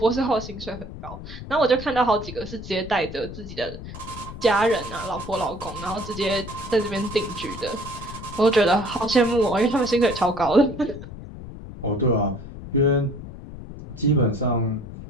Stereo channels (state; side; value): noise; left; rumble, 12 dB below the sound